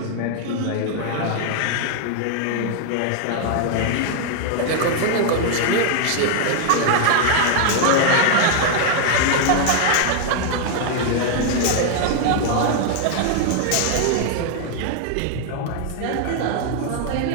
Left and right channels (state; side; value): different; both; correlation 0.00